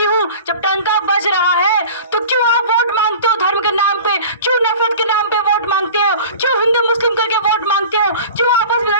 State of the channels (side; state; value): both; inverted; correlation -0.40